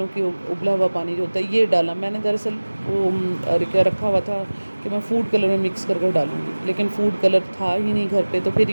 کی ابلا ہوا پانی جو ہوتا ہے یہ ڈالا۔ میں نے دراصل وہ رکھا ہوا تھا کہ میں فوڈ کلر میں مکس کر کے ڈالوں گی، لیکن فوڈ کلر تھا ہی نہیں گھر پہ، تو پھر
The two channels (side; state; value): both; inverted; correlation -1.00